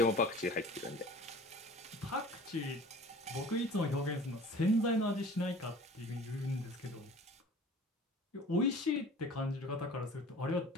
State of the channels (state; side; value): normal; both; correlation 0.44